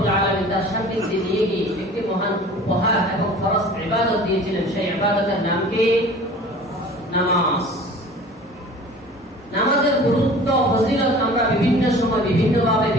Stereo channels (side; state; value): both; normal; correlation 0.44